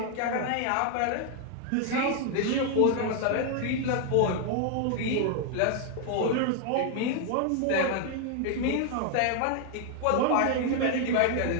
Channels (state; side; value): different; both; correlation 0.00